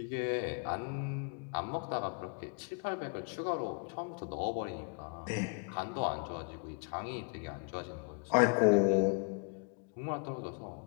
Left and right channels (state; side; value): quieter; right; 36.2 dB